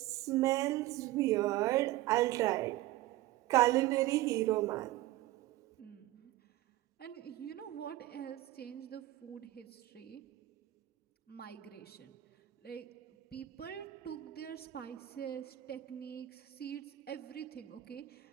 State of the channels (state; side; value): quieter; left; 16.2 dB